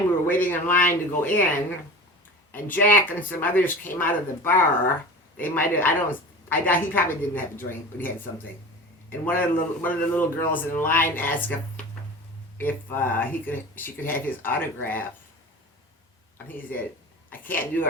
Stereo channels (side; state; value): both; normal; correlation 0.35